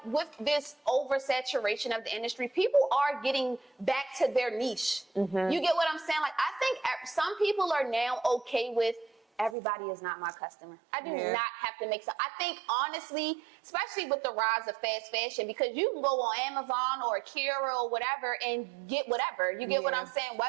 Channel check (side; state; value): left; drops out; at 9.6 s